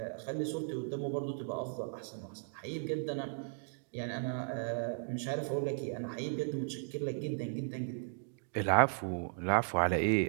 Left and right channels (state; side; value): silent; left; digital silence